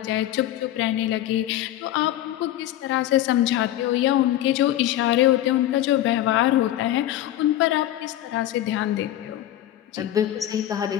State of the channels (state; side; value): quieter; right; 13.2 dB